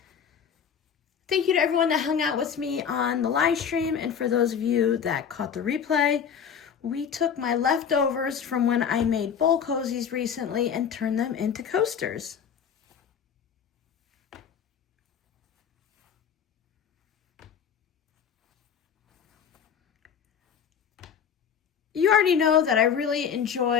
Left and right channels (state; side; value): quieter; right; 7.6 dB